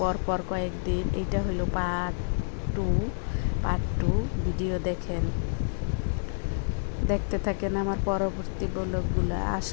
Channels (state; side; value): silent; right; digital silence